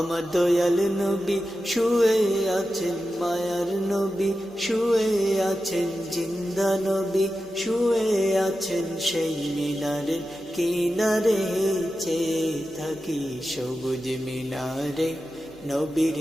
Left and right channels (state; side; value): normal; both; correlation 0.91